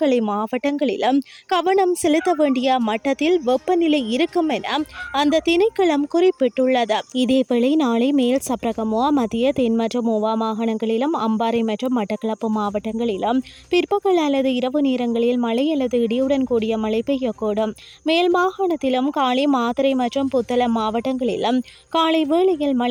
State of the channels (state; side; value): identical; both; correlation 1.00